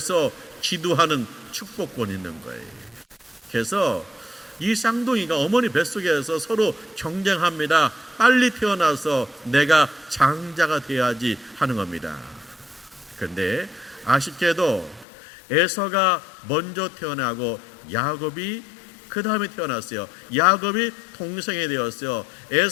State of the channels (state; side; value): drops out; right; at 15.1 s